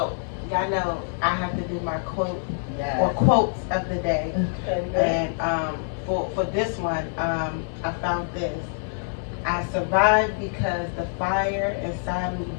y'all know I have to do my quote or Yeah. quotes of the day. Okay. And for this one, I found this. I survived because the fire inside me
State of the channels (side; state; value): right; silent; digital silence